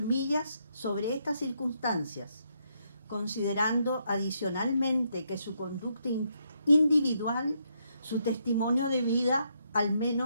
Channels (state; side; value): inverted; both; correlation -0.77